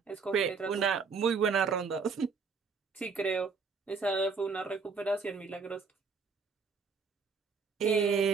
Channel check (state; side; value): quieter; left; 5.1 dB